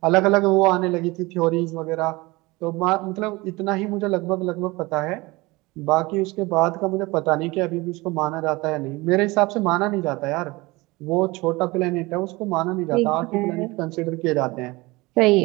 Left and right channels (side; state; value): left; quieter; 22.6 dB